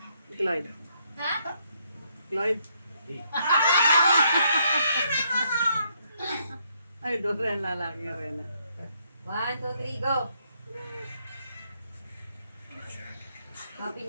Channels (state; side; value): inverted; both; correlation -0.73